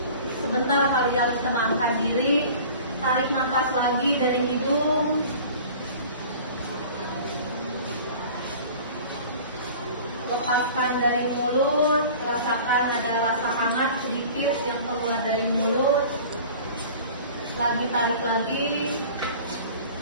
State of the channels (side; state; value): both; inverted; correlation -0.43